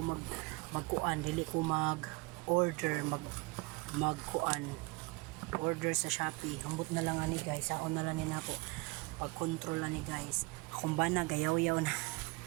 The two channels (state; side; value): quieter; left; 25.5 dB